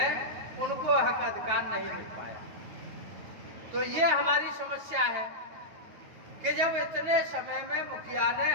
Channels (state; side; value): late; left; 9.3 ms